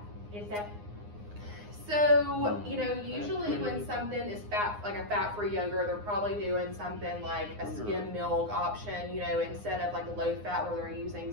Is that? So, you know, usually when something is fat, like a fat-free yogurt, they're probably doing something like a skim milk option, you know, instead of like a low-fat where they're using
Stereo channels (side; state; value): left; late; 9.7 ms